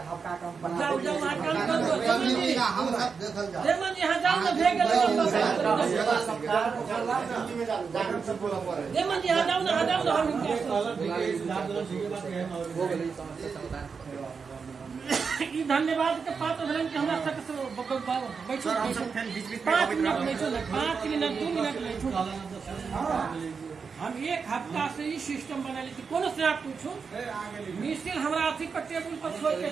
हफ्ता कम बना जाओ जाओ वहां काम कर हम सब देखल जा देमन यहां जाओ ना भेग गेल सरकार जिम्मेदार जागरूक सब बोला पड़े। देमन यहां जाओ ना हम ई धन्यवाद के पात्र भेलन कि हमरा तक बैठो हम सब फिर बीच-बीच 5 मिनट बैठो ना, 5 मिनट 2 मिनट बैठो। हम एक हफ्ता से ही सिस्टम बना ली कोनो से आप पूछो मिसिल हमरा अथी पर टेबुल पर छोड़ के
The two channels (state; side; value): quieter; left; 5.5 dB